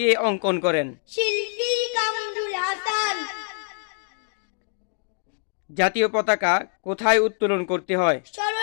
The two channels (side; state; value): right; silent; 62 dB below the other